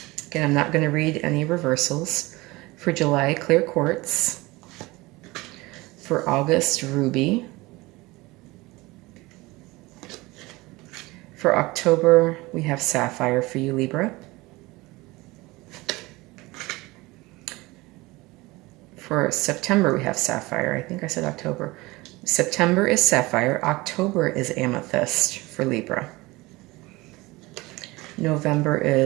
Again, I'm not going to read any reversals. For July, clear quartz. For August, ruby. For October, we have sapphire for you, Libra. For September, we have sapphire. I think I said October. September is sapphire. October is amethyst for Libra. November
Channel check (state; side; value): quieter; left; 21.7 dB